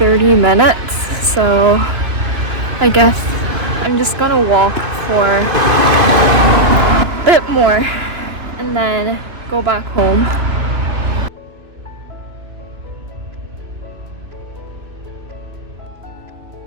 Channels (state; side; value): late; left; 3.2 ms